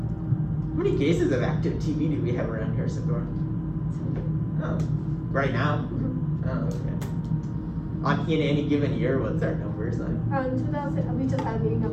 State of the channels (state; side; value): identical; both; correlation 1.00